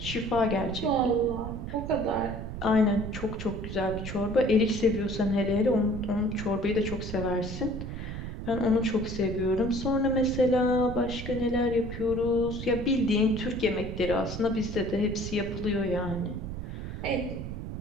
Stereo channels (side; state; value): right; noise; rumble, 7 dB below the sound